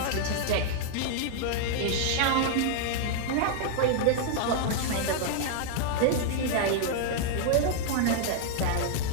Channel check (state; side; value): different; both; correlation -0.01